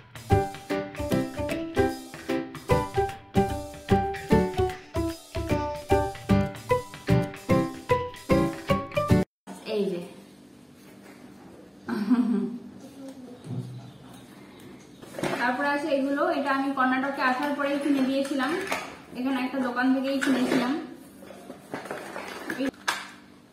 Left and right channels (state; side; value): identical; both; correlation 1.00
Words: তারপরে আছে এগুলো, এটা আমি কর্ণাটকে আসার পরেই কিনে দিয়েছিলাম, এখানে একটা দোকান থেকেই কিনেছিলাম।